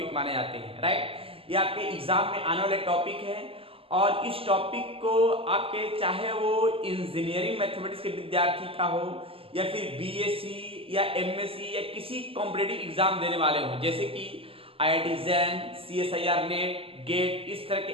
माने जाते हैं, राइट। ये आपके एग्जाम में आने वाले टॉपिक है, और इस टॉपिक को आपके चाहे वो इंजीनियरिंग मैथमेटिक्स के विद्यार्थी का हो या फिर बीएससी या एमएससी या किसी कॉम्पिटिटिव एग्जाम देने वाले हो, जैसे कि IIT JAM, CSIR NET, GATE, इस तरह के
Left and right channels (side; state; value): left; late; 0.27 ms